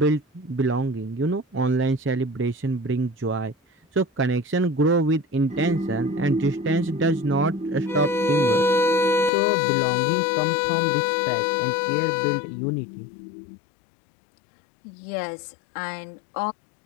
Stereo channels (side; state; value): right; drops out; at 9.3 s